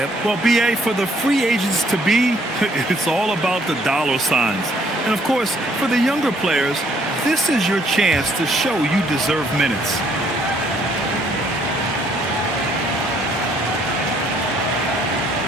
Well, BA, for the free agents to be, it's all about the dollar signs. And of course, for the younger players, this is your chance to show you deserve minutes.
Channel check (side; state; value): both; normal; correlation 0.65